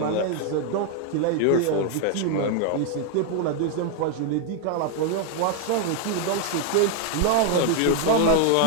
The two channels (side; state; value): both; different; correlation 0.00